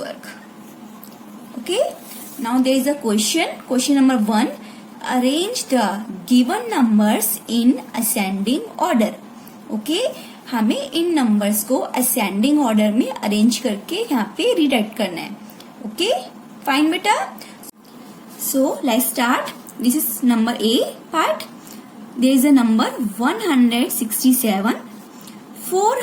Okay, now there is a question. Question number 1. Arrange the given numbers in ascending order. Okay, हमें इन numbers को ascending order में arrange करके यहाँ पे rewrite करना है. Okay, fine बेटा. So let's start. This is number A part. There is a number 167,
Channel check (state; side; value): identical; both; correlation 1.00